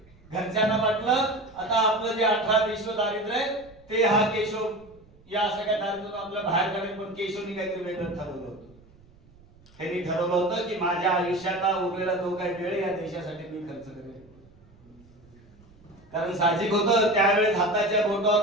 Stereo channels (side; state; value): right; noise; rumble, 27 dB below the sound